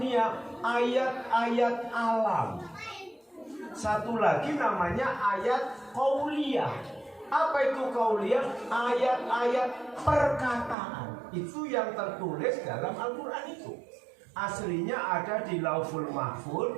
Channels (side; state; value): left; drops out; at 10.8 s